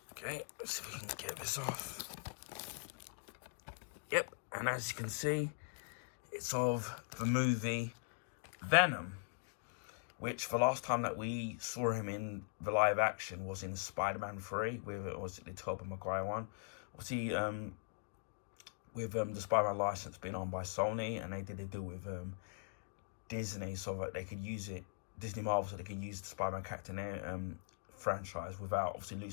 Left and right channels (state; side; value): silent; right; digital silence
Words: Okay, let's see if we can get this off. Yep, and as you can see, it's of the movie Venom, which the last time that we saw him in the live action was in Spider-Man 3, with it was the Tobey Maguire one. Obviously, with the Spider-Man license being owned by Sony, and they did a deal with Disney so that they could use it, Disney Marvel, so they can use the Spider-Man character in their franchise without obviously